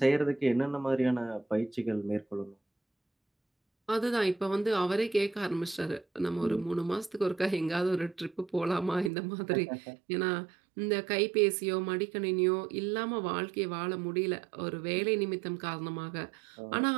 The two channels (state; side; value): drops out; left; at 9.1 s